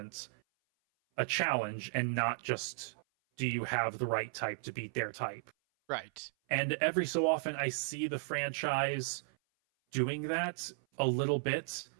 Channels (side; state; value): left; silent; 54 dB below the other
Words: a challenge, and not just, do you have the right type to beat their type? Right. And every so often I see the franchise doing that a little bit,